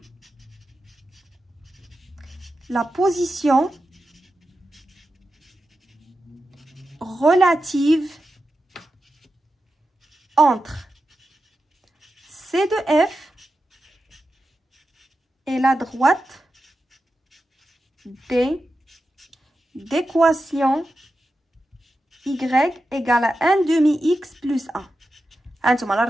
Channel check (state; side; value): normal; both; correlation 0.90